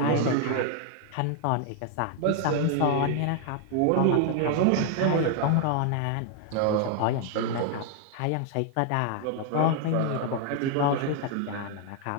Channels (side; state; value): both; different; correlation 0.00